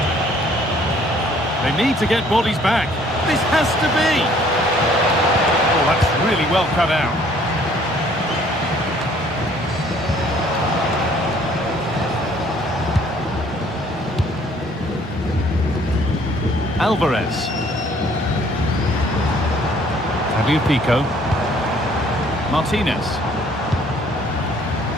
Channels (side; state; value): both; normal; correlation 0.59